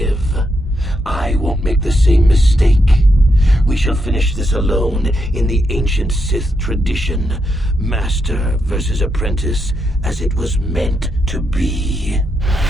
I won't make the same mistake. We shall finish this alone in the ancient Sith tradition. Master versus apprentice, as it was meant to be.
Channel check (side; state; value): both; normal; correlation 0.82